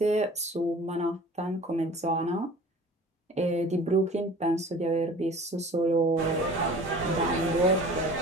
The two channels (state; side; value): normal; both; correlation 0.44